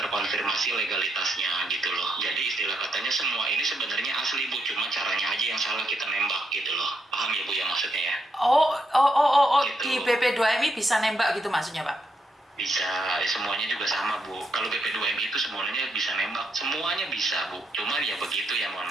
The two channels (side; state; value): both; normal; correlation 0.79